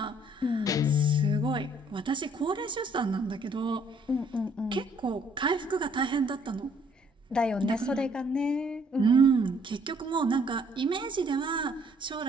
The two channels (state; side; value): normal; both; correlation 0.63